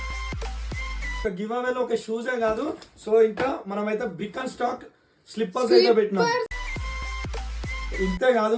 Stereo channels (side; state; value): both; identical; correlation 1.00